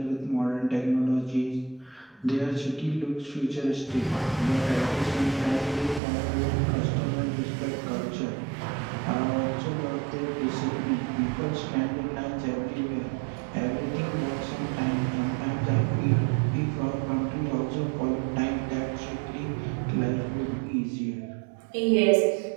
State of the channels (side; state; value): left; drops out; at 6.0 s